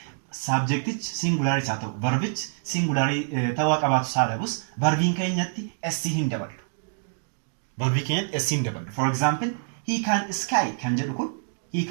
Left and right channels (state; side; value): silent; left; digital silence